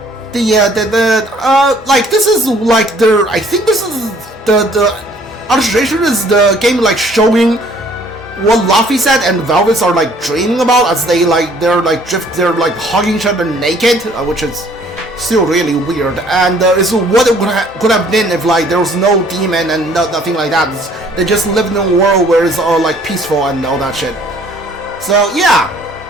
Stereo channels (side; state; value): both; normal; correlation 0.58